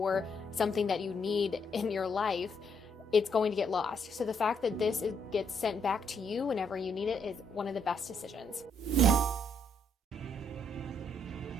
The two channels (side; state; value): both; normal; correlation 0.73